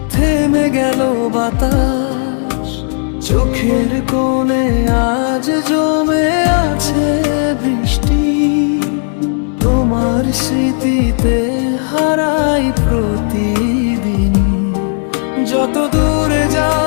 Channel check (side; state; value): right; silent; 63 dB below the other